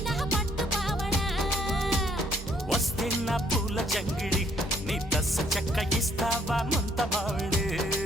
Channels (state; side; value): normal; both; correlation 0.66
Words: నా పట్టు పావడా వస్తే నా పూల జంగిడి నీ దస్స చెక్క ఇస్తావా ముంత మావిడి